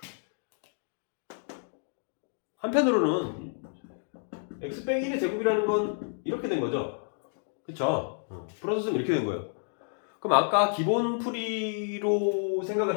한편으로는 x 빼기 1의 제곱이라는 건 이렇게 된 거죠. 그쵸? 풀어서 쓰면 이렇게 된 거예요. 그럼 아까 기본 풀이로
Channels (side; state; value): right; silent; digital silence